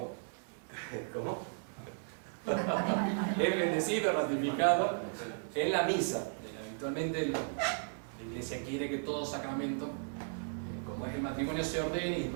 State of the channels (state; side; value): silent; left; digital silence